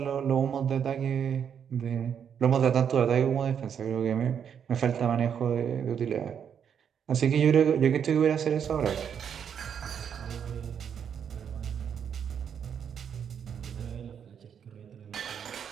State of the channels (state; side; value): quieter; left; 7.9 dB